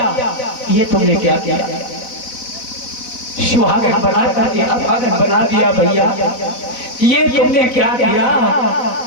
ये तुमने क्या किया? सुहागन बना करके अभागन बना दिया भैया, ये तुमने क्या किया?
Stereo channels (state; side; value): late; right; 4.0 ms